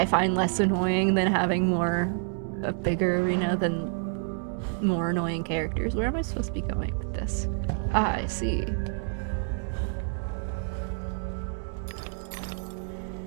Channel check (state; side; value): silent; left; 57 dB below the other